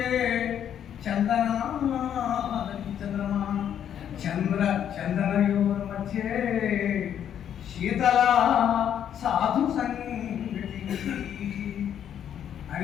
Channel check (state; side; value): quieter; right; 9.5 dB